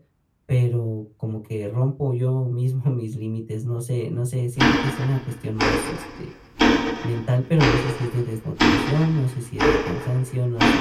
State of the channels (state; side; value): identical; both; correlation 1.00